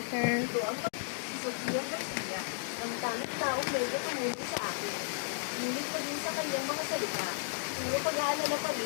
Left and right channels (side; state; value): right; silent; digital silence